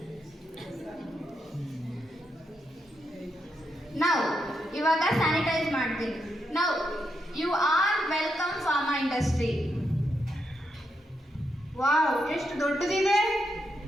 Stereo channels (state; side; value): normal; both; correlation 0.82